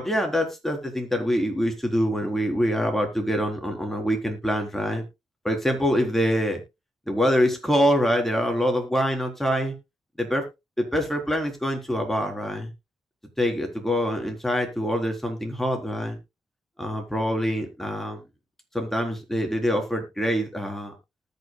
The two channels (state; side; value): normal; both; correlation 0.83